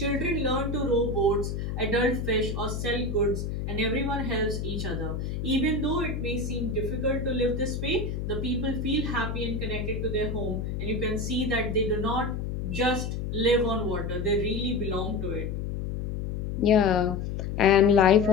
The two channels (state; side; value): noise; left; hum, 4 dB below the sound